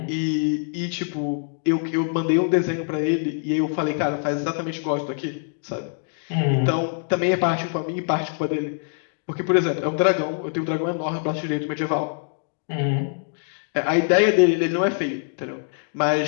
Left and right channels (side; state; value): right; silent; digital silence